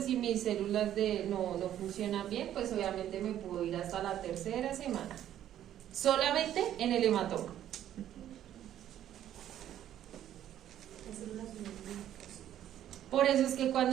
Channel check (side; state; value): left; quieter; 11.4 dB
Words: si mis células no funcionan bien, pues obviamente me puedo ir hasta la tercera semana. Solamente en el hematoma. Por eso es que